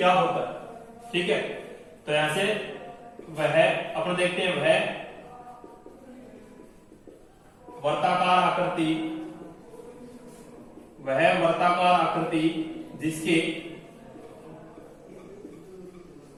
होता है। ठीक है, तो यहां से वह अपन देखते हैं वह वर्ताकार आकृति जिसके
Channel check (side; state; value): both; identical; correlation 1.00